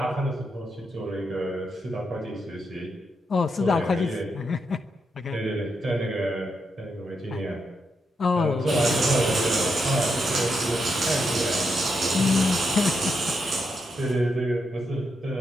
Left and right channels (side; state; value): both; normal; correlation 0.82